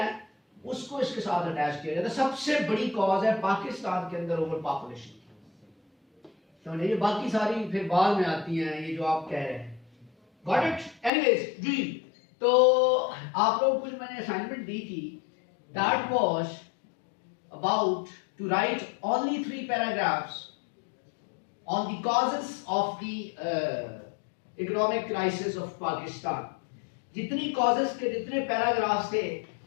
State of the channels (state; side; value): drops out; right; at 11.1 s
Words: है उसको इसके साथ अटैच किया जाता है। सबसे बड़ी कॉज है पाकिस्तान के अंदर ओवर पॉपुलेशन, समझे, ये बाकी सारी फिर बाद में आती हैं, ये जो आप कह रहे हैं। Got it? एनीवेज जी, तो आप लोगों को जो मैंने असाइनमेंट दी थी, that was about to write only 3 paragraphs on the causes of the economic crisis of Pakistan। जितनी causes के जितने पैराग्राफ्स थे,